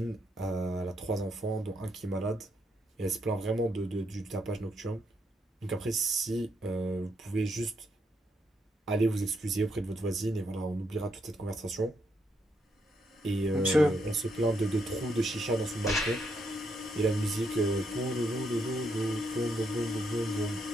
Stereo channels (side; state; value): both; normal; correlation 0.77